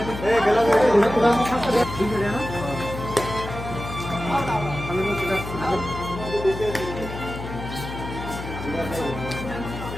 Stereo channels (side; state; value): left; noise; hum, 9 dB below the sound